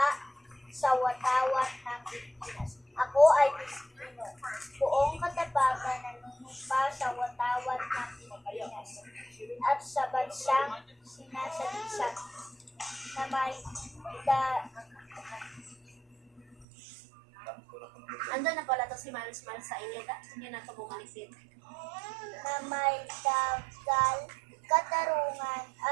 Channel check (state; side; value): drops out; left; at 16.7 s